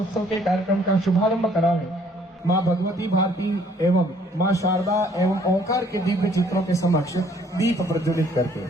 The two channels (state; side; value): normal; both; correlation 0.61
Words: के कार्यक्रम का शुभारंभ करावे माँ भगवती भारती एवं माँ शारदा एवं ओंकार के दिव्य चित्रों के समक्ष दीप प्रज्वलित करके